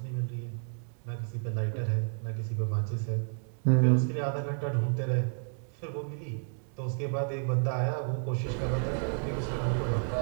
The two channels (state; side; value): silent; left; 57 dB below the other